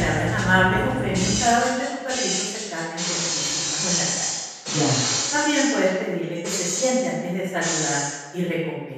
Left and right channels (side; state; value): both; identical; correlation 1.00